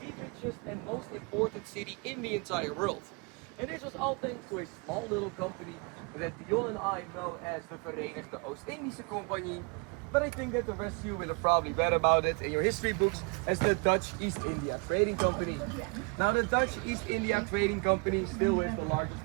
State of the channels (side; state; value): left; quieter; 31.3 dB